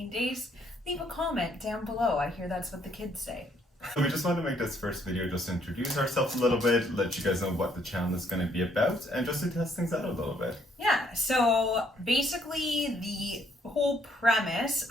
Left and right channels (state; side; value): normal; both; correlation 0.68